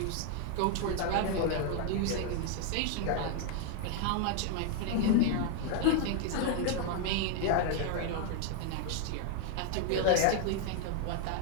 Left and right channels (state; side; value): different; both; correlation 0.00